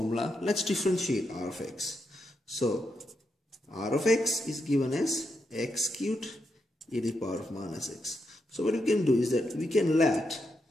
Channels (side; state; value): both; normal; correlation 0.83